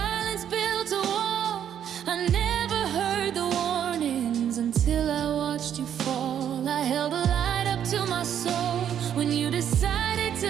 built a wall. I never heard the warnings until I watched you fall. I held a light up to my soul when you decided to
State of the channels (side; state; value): left; quieter; 9.5 dB